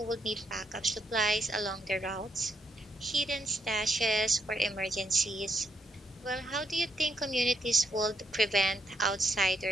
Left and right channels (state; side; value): normal; both; correlation 0.76